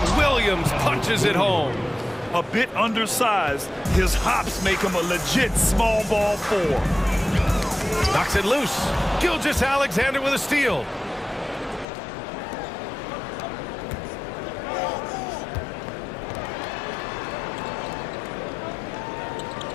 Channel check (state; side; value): drops out; right; at 11.9 s